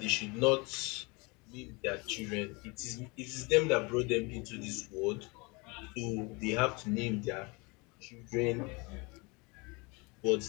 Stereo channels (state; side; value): quieter; right; 27.9 dB